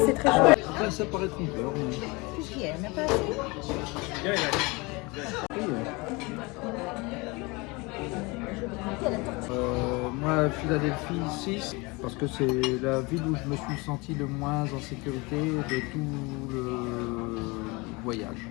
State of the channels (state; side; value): quieter; right; 25.9 dB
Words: c'est très chaud. Ça paraît trompeur. Mais... Qu'est-ce qu'il y a? Il n'y en a pas assez? Moi, Philadelphie 6, parce que c'est la ville où je me suis senti le moins en sécurité de tout le voyage.